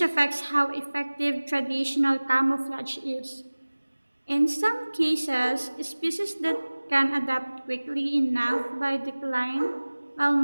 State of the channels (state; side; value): inverted; both; correlation -1.00